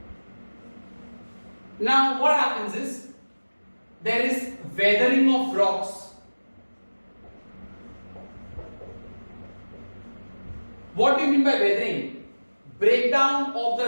Now, what happens is there is weathering of rocks. What do you mean by weathering? Breakdown of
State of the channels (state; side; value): inverted; both; correlation -1.00